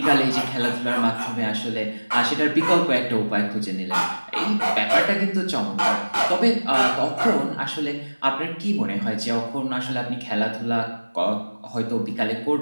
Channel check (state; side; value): inverted; both; correlation -1.00